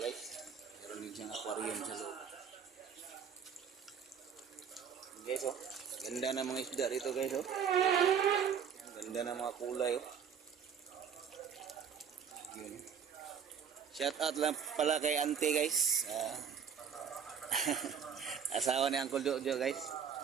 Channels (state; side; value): quieter; left; 7.5 dB